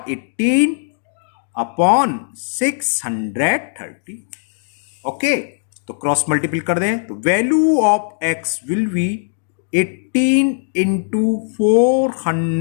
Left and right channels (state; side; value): silent; right; digital silence